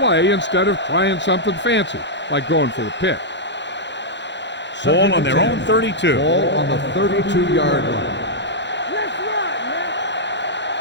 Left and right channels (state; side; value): late; right; 0.52 ms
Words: instead of trying something fancy, like going for the pick. Ball on their own 32. Ball on the 32-yard line. Let's run, man.